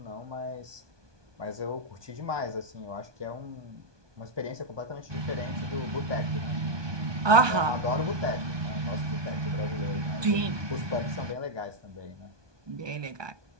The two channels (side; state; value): left; late; 1.2 ms